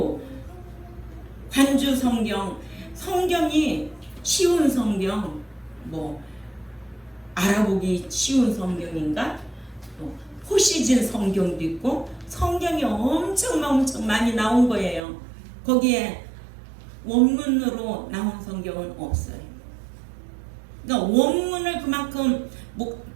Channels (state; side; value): drops out; left; at 15.0 s